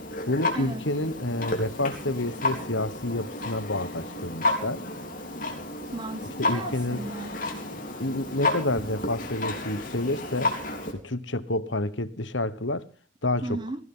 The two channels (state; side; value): normal; both; correlation -0.04